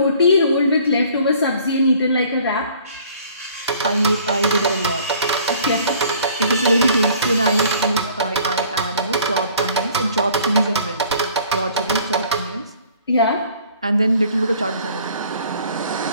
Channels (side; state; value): both; inverted; correlation -0.54